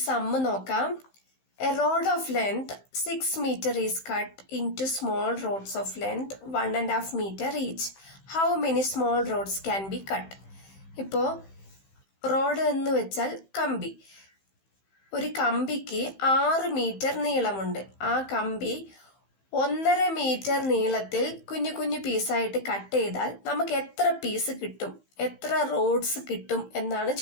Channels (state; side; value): late; right; 15 ms